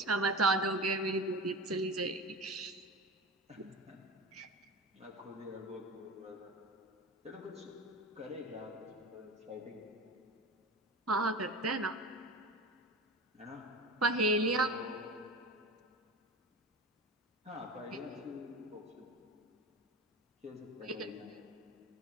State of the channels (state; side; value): normal; both; correlation 0.30